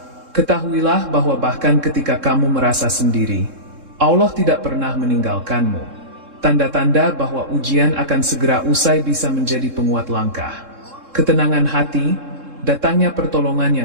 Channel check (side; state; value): left; late; 3.7 ms